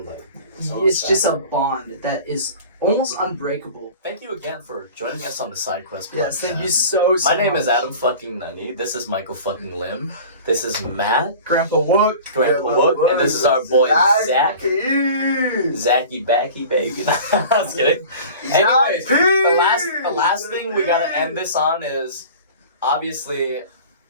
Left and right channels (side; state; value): both; inverted; correlation -0.41